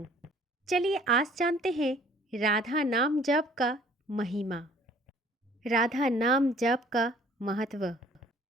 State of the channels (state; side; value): normal; both; correlation 0.56